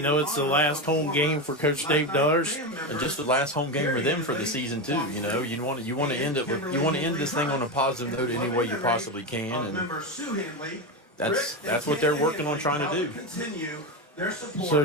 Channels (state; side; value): normal; both; correlation 0.15